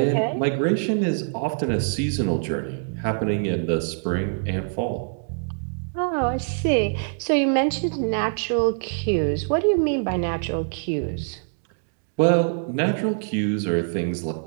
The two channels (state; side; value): silent; left; digital silence